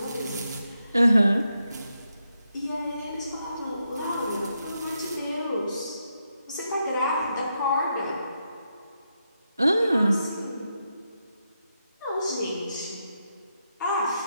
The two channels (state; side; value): inverted; both; correlation -0.83